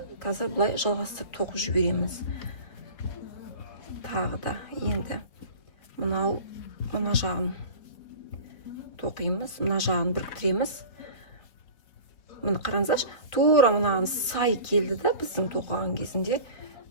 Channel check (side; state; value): right; late; 3.8 ms